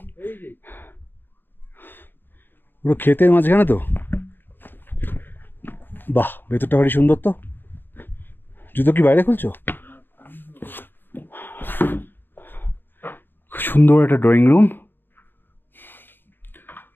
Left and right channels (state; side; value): late; right; 0.095 ms